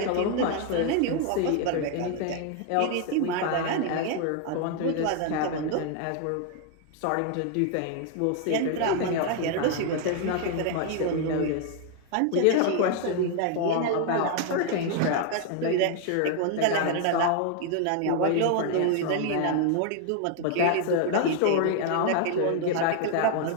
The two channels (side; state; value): both; different; correlation 0.00